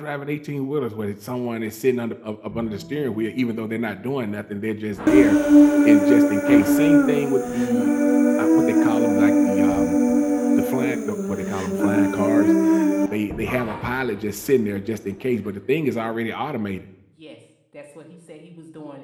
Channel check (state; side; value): identical; both; correlation 1.00